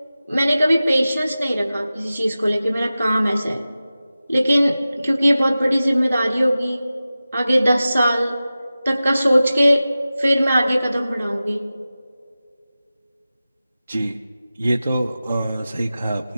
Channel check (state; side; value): inverted; both; correlation -0.95